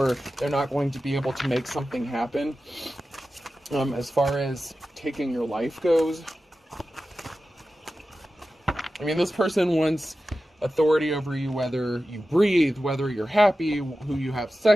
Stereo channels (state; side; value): normal; both; correlation 0.94